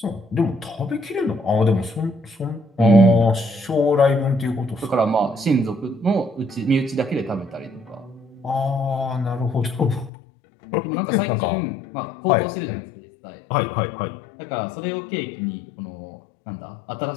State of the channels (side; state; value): right; drops out; at 10.1 s